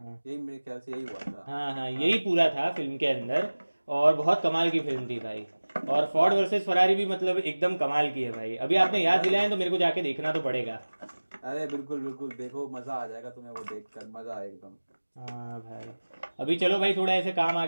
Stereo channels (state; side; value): inverted; both; correlation -1.00